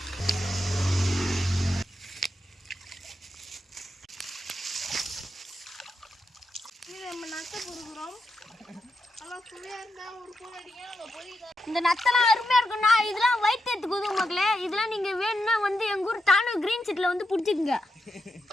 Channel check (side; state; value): both; normal; correlation 0.86